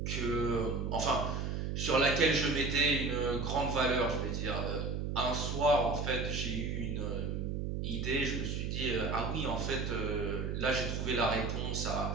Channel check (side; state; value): right; noise; hum, 2 dB below the sound